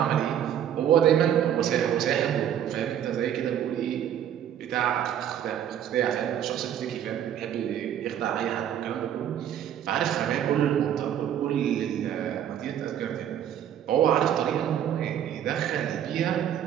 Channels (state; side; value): quieter; left; 10.1 dB